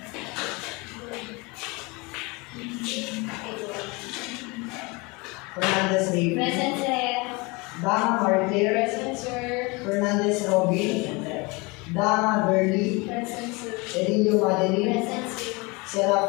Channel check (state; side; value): quieter; right; 26.5 dB